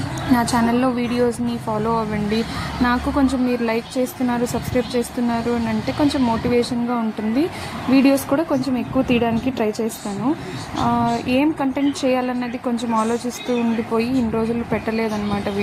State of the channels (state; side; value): identical; both; correlation 1.00